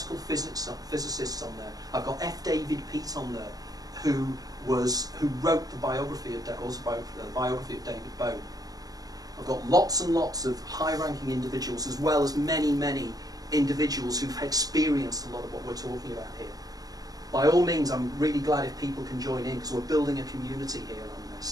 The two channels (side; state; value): left; late; 0.18 ms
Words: physicists on there. I've got F. David Peake on there, who wrote the biography of David Bowie. I've got lots and lots of high-ranking individuals, as well as many, many individuals who've experienced a lot of what we're talking about here. By all means, I'm really glad if people can join in, because we're building a community here on